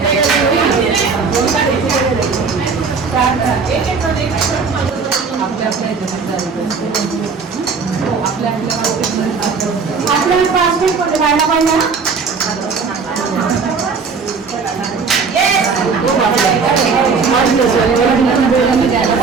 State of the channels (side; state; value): left; quieter; 5.1 dB